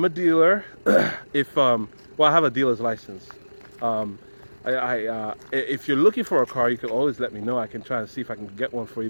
dealer. Well, I have a dealer's license. If you're looking for a car, you can always let me know. I can try and see if I can get one for you.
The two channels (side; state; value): both; inverted; correlation -1.00